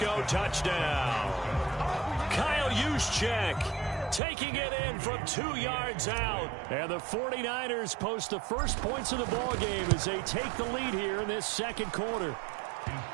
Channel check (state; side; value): drops out; left; at 4.2 s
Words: touchdown. Kyle Juszczyk taking it in from 2 yards out. And the 49ers post the first points of the ballgame as they take the lead here in this second quarter.